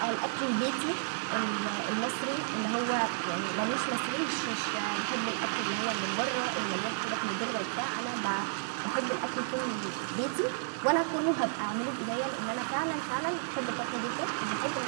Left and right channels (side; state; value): left; silent; 56 dB below the other